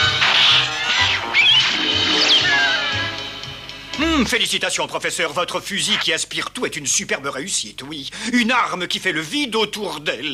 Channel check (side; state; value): both; identical; correlation 1.00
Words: Félicitations, professeur. Votre fusil qui aspire tout est une superbe réussite, oui. Une arme qui fait le vide autour